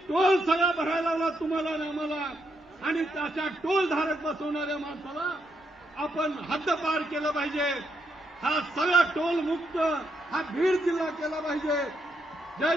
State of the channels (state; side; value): normal; both; correlation 0.79